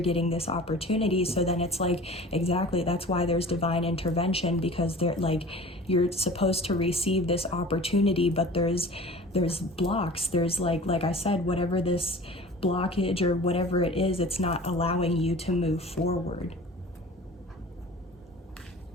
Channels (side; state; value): both; normal; correlation 0.41